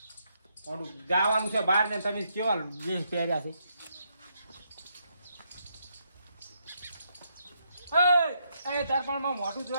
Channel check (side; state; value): both; inverted; correlation -0.77